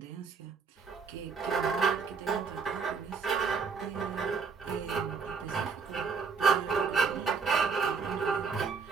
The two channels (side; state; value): left; quieter; 5.2 dB